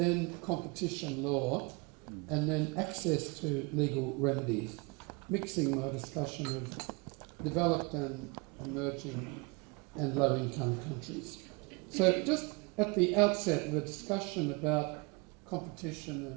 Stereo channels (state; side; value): quieter; left; 29.0 dB